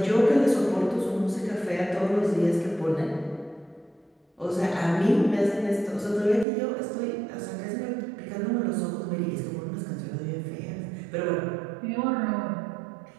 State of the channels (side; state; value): left; drops out; at 6.5 s